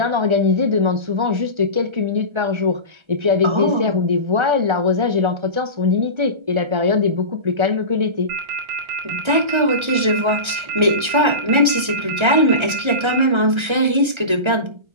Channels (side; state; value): left; late; 1.3 ms